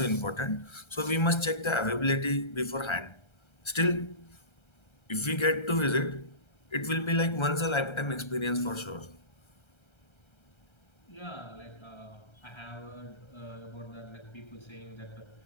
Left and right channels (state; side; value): late; right; 1.3 ms